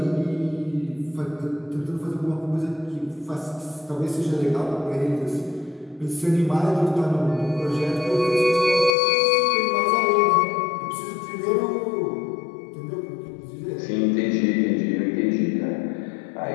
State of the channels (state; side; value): drops out; right; at 9.0 s